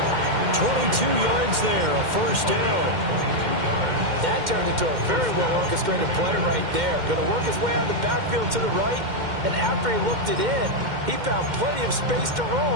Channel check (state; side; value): late; left; 2.1 ms